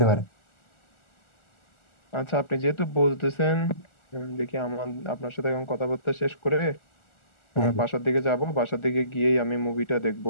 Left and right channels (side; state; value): right; late; 1.4 ms